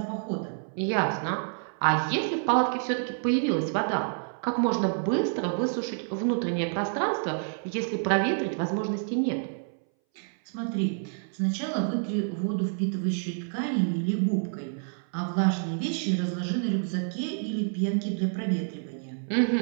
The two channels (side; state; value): left; silent; 59 dB below the other